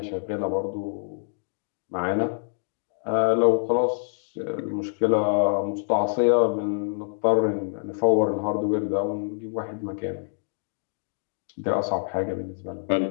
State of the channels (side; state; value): right; silent; digital silence